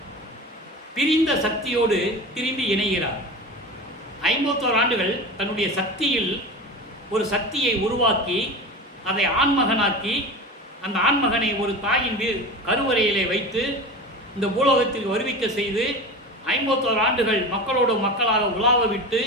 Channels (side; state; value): both; normal; correlation 0.30